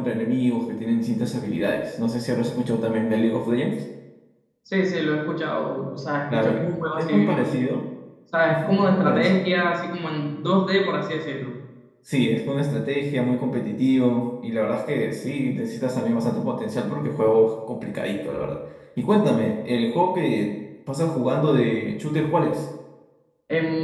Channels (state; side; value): identical; both; correlation 1.00